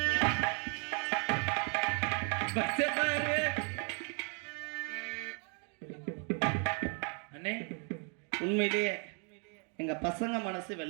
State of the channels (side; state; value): left; quieter; 38.4 dB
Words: அண்ணே, உண்மையிலேயே எங்க பசங்க மனசு